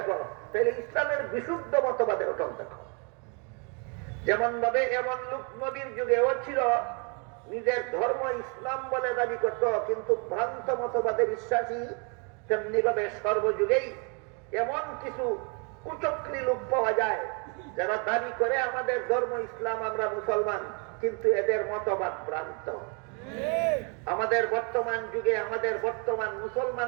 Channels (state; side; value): quieter; left; 35.4 dB